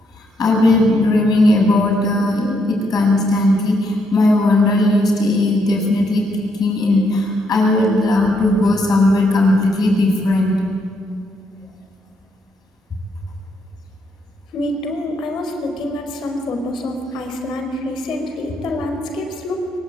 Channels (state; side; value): normal; both; correlation 0.75